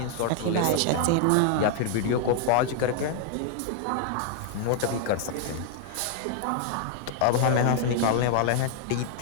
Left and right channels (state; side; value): different; both; correlation 0.00